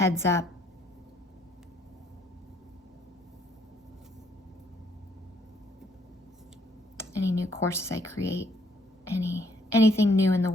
up. Any new courses I create, anything new in the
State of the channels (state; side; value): normal; both; correlation 0.67